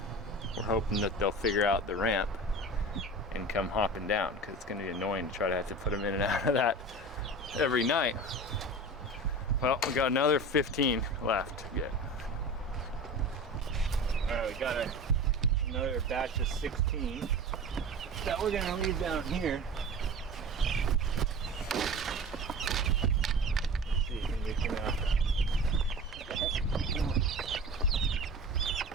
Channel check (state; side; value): normal; both; correlation 0.34